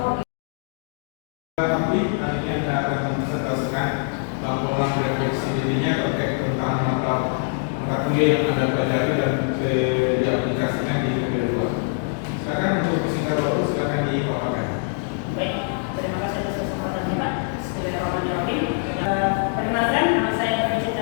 Tapi akhirnya kita akan mempresentasikan laporan refleksi dirinya terkait tentang mata kuliah yang Anda pelajari dan diaplikasikan di PPG. Silakan untuk singkat waktu, silakan dipaparkan. Baik, terima kasih atas kesempatannya Pak. Bismillahirrahmanirrahim. Perkenalkan, nama saya Fajita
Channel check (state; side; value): silent; right; 57 dB below the other